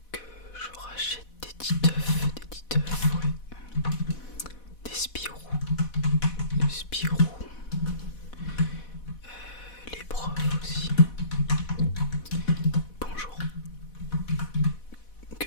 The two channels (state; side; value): late; right; 4.1 ms